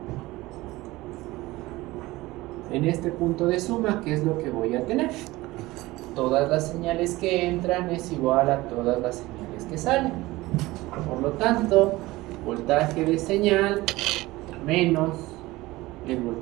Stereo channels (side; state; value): left; quieter; 19.4 dB